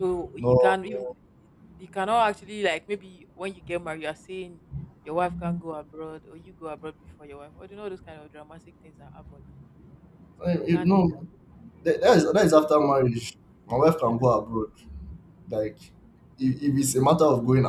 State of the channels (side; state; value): both; identical; correlation 1.00